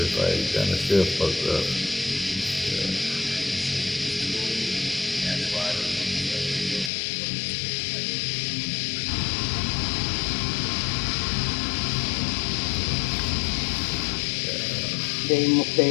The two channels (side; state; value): right; drops out; at 6.9 s